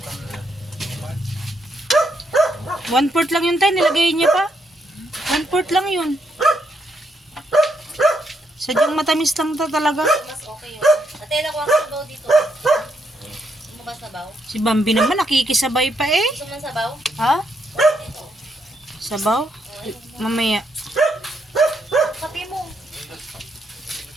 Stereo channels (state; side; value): normal; both; correlation 0.77